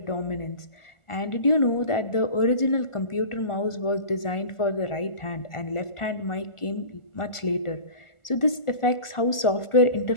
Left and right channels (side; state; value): right; late; 1.4 ms